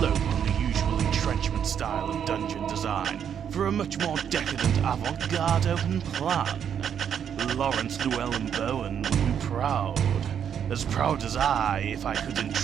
on the usual entrenchment style of dungeon design for a much more decadent avant-garde open plan. Lawrence Llewellyn Bowen would be proud as I, if I could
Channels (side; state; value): left; quieter; 8.4 dB